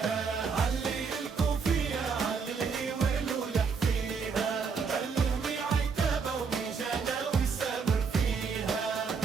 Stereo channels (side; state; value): left; quieter; 5.5 dB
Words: علي الكوفية علي الهوال ولح فيها، غني عتابة وميجانة وسامر فيها.